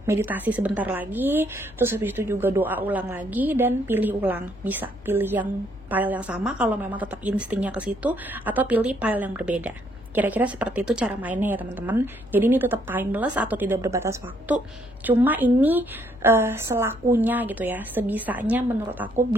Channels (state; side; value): noise; left; hum, 23 dB below the sound